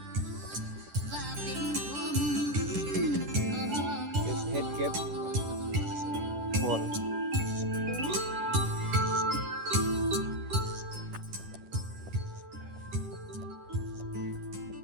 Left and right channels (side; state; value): left; late; 10 ms